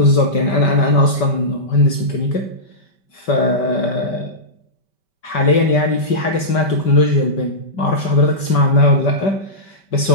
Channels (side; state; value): right; late; 5.2 ms